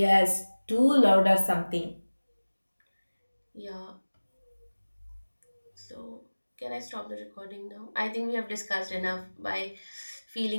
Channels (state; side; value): inverted; both; correlation -1.00